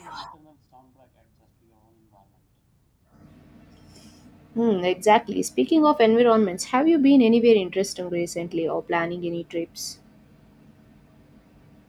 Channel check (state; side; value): identical; both; correlation 1.00